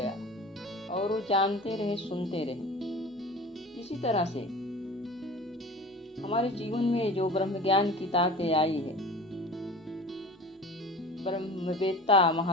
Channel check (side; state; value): both; normal; correlation 0.38